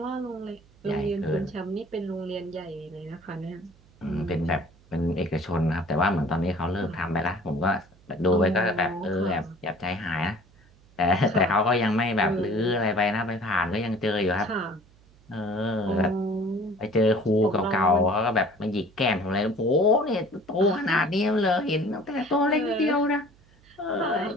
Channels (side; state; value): right; noise; hum, 28 dB below the sound